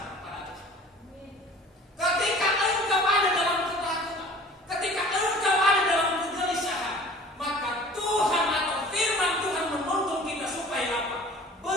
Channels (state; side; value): normal; both; correlation 0.46